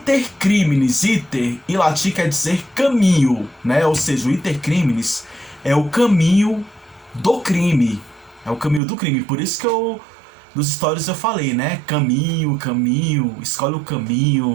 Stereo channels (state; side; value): drops out; left; at 8.8 s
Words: iter em latim quer dizer caminho, né? Ou seja, o Intercrimes é o caminho do crime. É o caminho do crime. Por isso que nos stories eu falei, né? Caminho, escolhe o